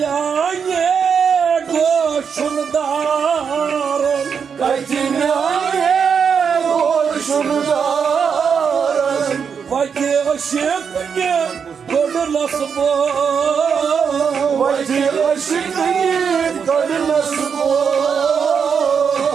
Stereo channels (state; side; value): quieter; left; 6.6 dB